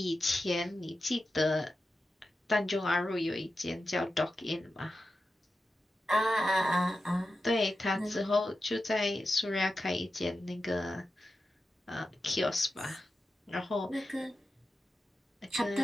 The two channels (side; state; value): both; normal; correlation 0.91